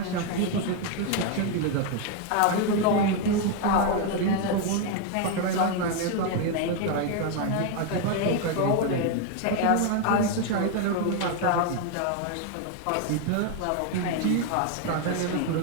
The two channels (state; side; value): different; both; correlation 0.01